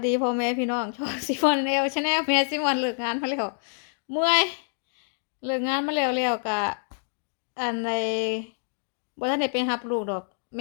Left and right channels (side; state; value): right; silent; digital silence